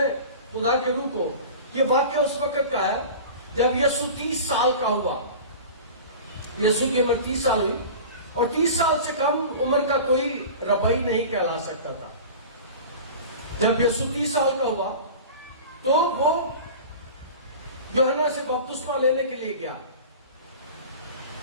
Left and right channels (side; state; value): both; inverted; correlation -0.36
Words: خدا کے روح کو, یہ واقعہ اس وقت کا ہے جب یسوع 30 سال کا ہوا. یسوع کی عمر 30 سال ہوئی اور 30 سال سے کم عمر کا کوئی ربی نہیں کہلا سکتا تھا. جب یسوع 30 سال کا ہوا تو وہ یوحنا سے بپتسمہ لینے کے لیے گیا.